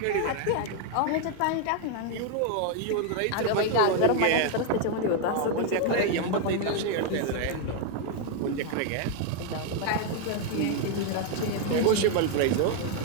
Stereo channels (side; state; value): both; different; correlation 0.00